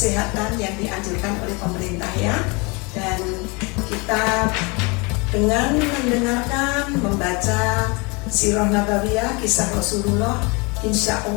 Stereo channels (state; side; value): quieter; right; 28.8 dB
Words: yang dianjurkan oleh pemerintah ya. Dan kita dengan mendengarkan, membaca Sirah Nabawiyah, kisah Rasulullah, insya